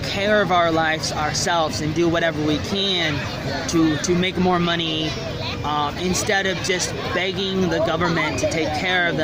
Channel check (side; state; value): both; identical; correlation 1.00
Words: care of our lives ourselves and do whatever we can to make more money, instead of just begging the government to take care of